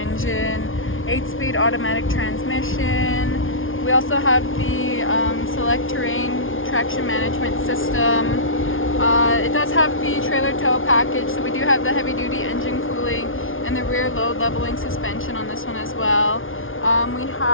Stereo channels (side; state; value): right; late; 0.58 ms